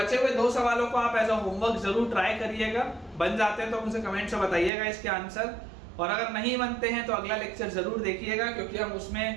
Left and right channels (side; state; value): left; drops out; at 4.7 s